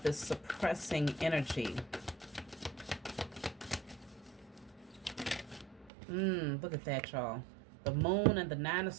this suppressing energy. Look at that, y'all. The moon and the 9 of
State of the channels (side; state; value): left; drops out; at 5.9 s